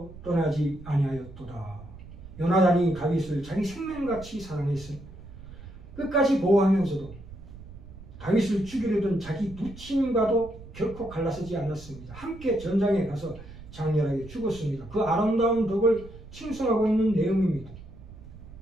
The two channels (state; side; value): noise; right; rumble, 16 dB below the sound